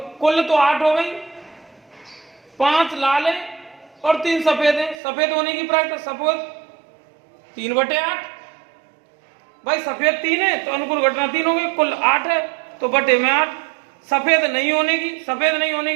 कुल तो 8 हो गई, 5 लाल है और 3 सफेद है। सफेद होने की प्रायिकता सफेद 3/8 भाई। सफेद 3 है तो अनुकूल घटना 3 हो गई। कुल 8 है तो बटे में 8। सफेद नहीं होने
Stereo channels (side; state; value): left; drops out; at 5.0 s